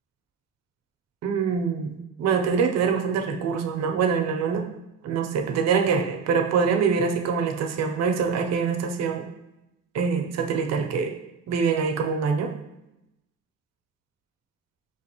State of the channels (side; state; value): left; quieter; 5.6 dB